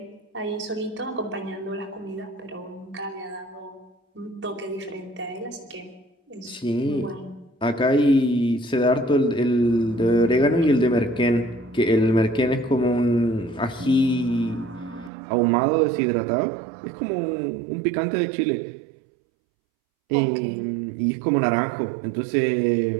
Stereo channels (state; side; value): drops out; left; at 15.1 s